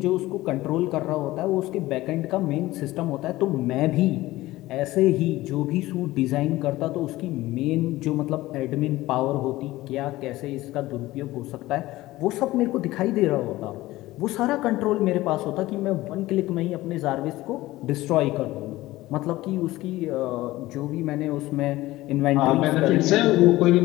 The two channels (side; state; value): right; quieter; 17.6 dB